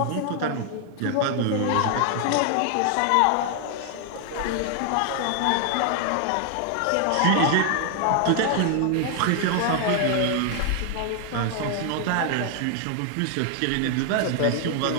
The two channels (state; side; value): different; both; correlation 0.00